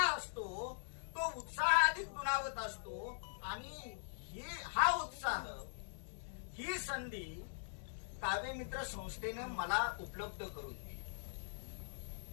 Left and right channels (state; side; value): silent; right; digital silence